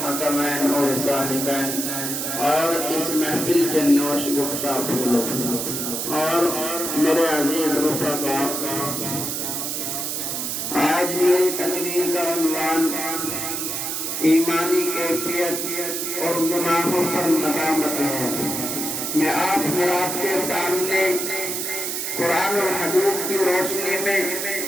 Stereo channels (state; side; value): noise; right; hiss, 2 dB below the sound